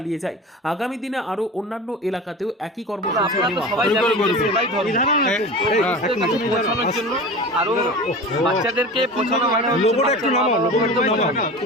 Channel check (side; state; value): both; normal; correlation 0.33